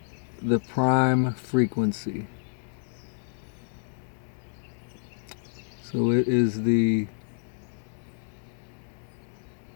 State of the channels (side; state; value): right; silent; 59 dB below the other